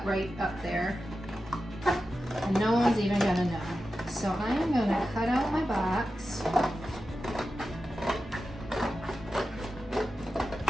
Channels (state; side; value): normal; both; correlation 0.92